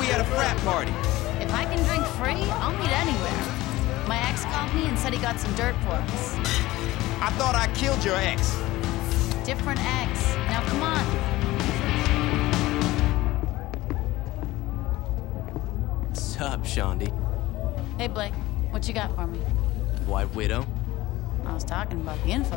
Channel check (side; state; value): right; quieter; 18.0 dB